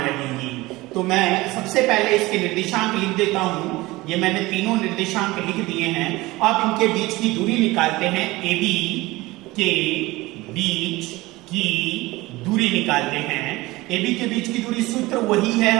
रहेंगी। तो मैं सबसे पहले इसके निर्देशांक लिख देता हूं। ये मैंने तीनों निर्देशांक लिख दिए हैं। अब इनके बीच की दूरी निकालते हैं। AB के बीच की दूरी निकालते हैं। AB के बीच की दूरी सूत्र वही है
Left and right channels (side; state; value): left; quieter; 20.2 dB